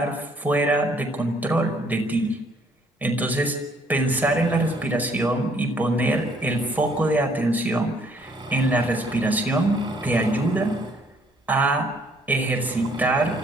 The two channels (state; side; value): normal; both; correlation 0.64